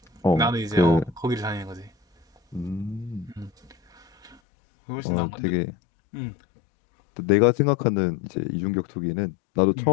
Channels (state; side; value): drops out; right; at 4.4 s